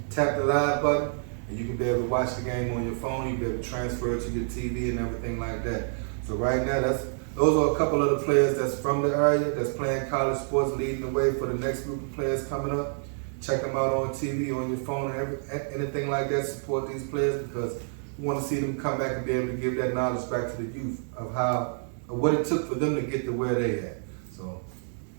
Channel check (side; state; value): left; silent; digital silence